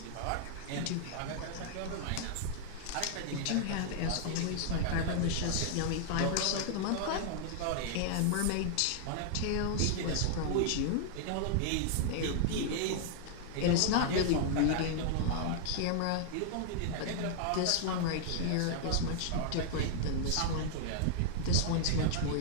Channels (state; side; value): different; both; correlation 0.00